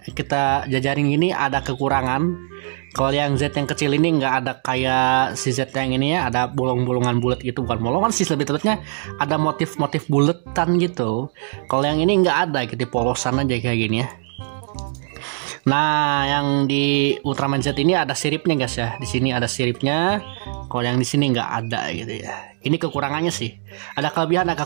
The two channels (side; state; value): left; silent; digital silence